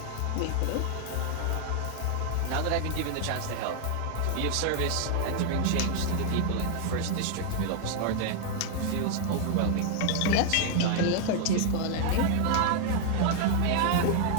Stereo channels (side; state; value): both; different; correlation 0.00